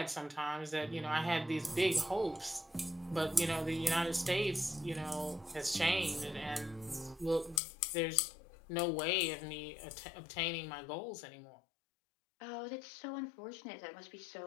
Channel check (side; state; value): right; drops out; at 7.6 s